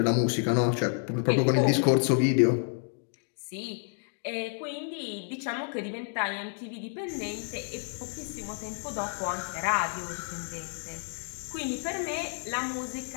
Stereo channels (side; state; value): right; silent; 58 dB below the other